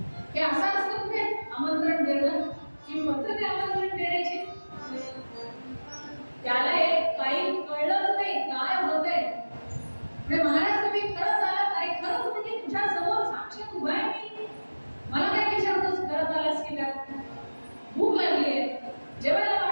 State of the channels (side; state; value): both; inverted; correlation -1.00